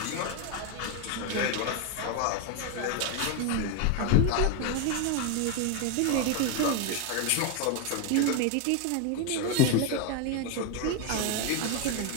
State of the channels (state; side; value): different; both; correlation 0.01